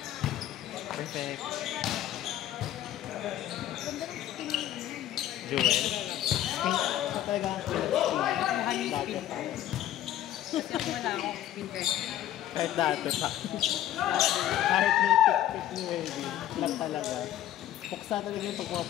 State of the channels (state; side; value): quieter; right; 12.4 dB